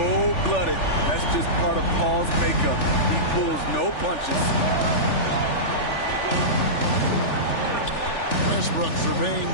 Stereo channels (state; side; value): late; right; 3.4 ms